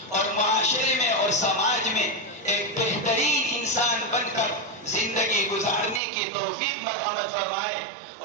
اور معاشرے میں اور سماج میں ایک بہترین انسان بن کر زندگی گزارنے کی توفیق مرحمت فرمائے۔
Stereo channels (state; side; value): drops out; left; at 6.0 s